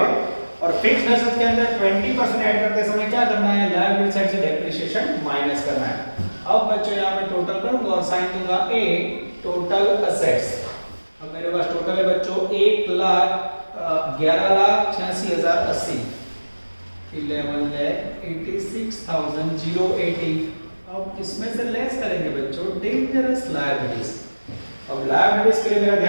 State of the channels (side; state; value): both; inverted; correlation -1.00